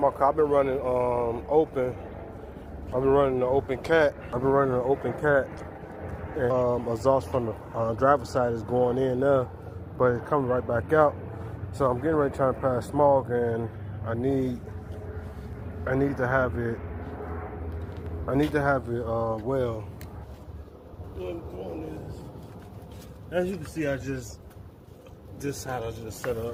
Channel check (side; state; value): both; identical; correlation 1.00